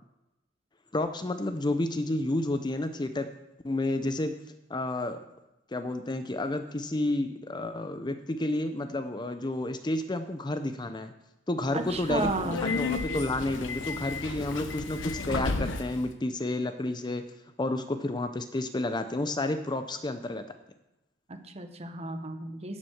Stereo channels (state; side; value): normal; both; correlation 0.66